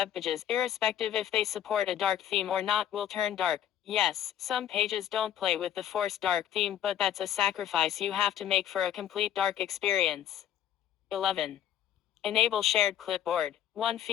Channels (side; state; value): right; quieter; 10.7 dB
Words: pages, irrespective if they support a dark theme or not, will turn dark. Yes, some pages don't play with the forced dark theme, but that's a sacrifice you have to make for a complete dark experience. 11. Enable shared clipboard. One